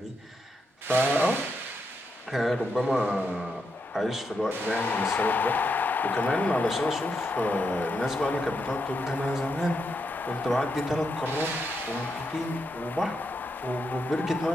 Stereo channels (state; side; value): normal; both; correlation 0.82